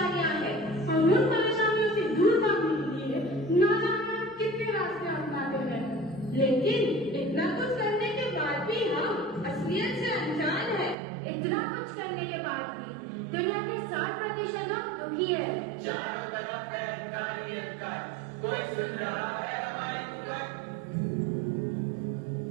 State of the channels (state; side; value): drops out; left; at 11.0 s